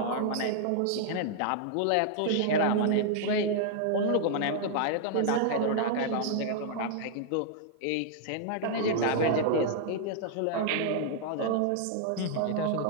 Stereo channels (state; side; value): different; both; correlation -0.01